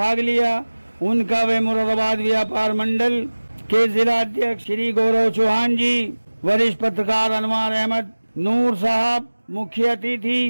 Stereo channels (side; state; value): both; inverted; correlation -1.00